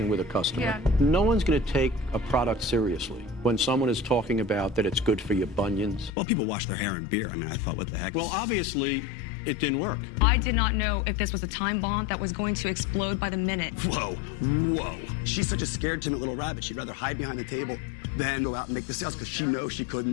with a customer. Yeah. No one's going to take a product seriously when someone is talking about that it's good for your bunions. Well, people wash their hair in beer. I mean, I thought, what the heck? Well, obviously, it didn't work. I did not know if this was a time bomb that was going to explode by the minute. Whoa, whoa. She's such a scared, timid little rabbit. She'd rather hide behind the table than go out and make the sales because she knows she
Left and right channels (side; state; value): right; drops out; at 6.1 s